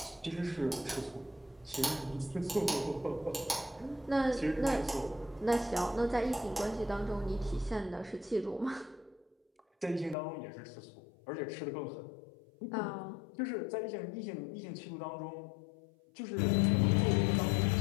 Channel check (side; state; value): right; drops out; at 10.2 s